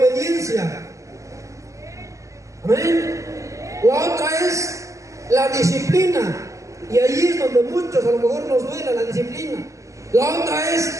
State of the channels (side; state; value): left; late; 0.16 ms